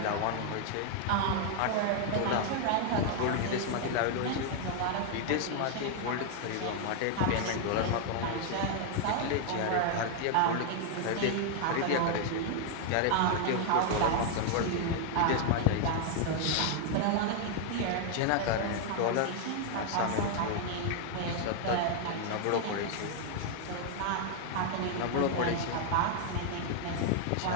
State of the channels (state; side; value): different; both; correlation 0.00